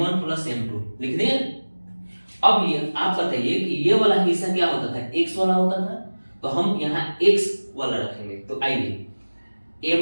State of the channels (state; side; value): inverted; both; correlation -1.00